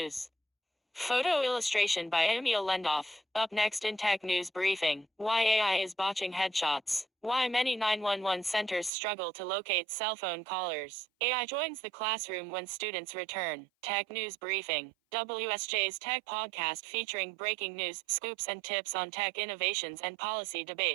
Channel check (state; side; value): drops out; left; at 8.9 s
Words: Photo illustration by Emil Lendoff. Up next in Tech News Briefing. Why AI is botching headshots. Why many 911 centers struggle to locate cell phone callers. AI joins the classroom when students return. Tech News Briefing. WSJ's Tech Podcast featuring breaking news, scoops and tips on tech innovations and policy